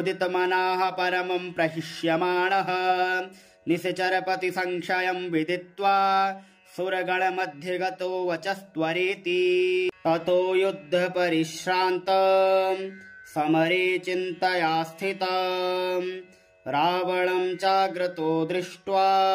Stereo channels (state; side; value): identical; both; correlation 1.00